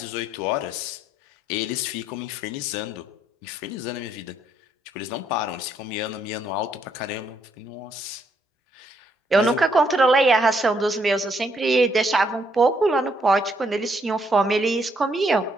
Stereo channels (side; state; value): both; normal; correlation 0.72